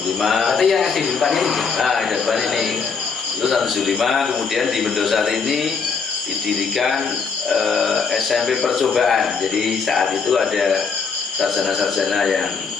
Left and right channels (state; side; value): quieter; right; 5.5 dB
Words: Berarti yang SD di depan ini? Nah di depan ini lulus tahun 75. Kemudian di Mendosari ini didirikan SMP percobaan. Jadi saat itu ada sarjana-sarjana yang